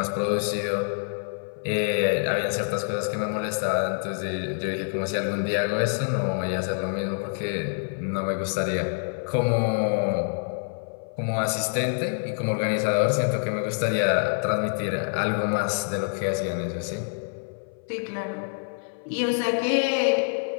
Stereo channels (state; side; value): silent; right; 57 dB below the other